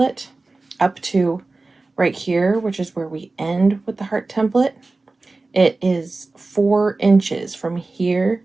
up to right here, which is where we end with the heart template, it is 4 inches from here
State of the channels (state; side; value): quieter; left; 3.4 dB